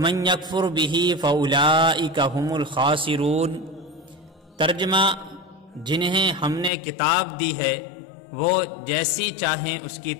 یکفر بہ فاولئک ھم الخاسرون۔ ترجمہ: جنہیں ہم نے کتاب دی ہے وہ جیسی چاہیں اس کی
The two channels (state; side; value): drops out; right; at 6.7 s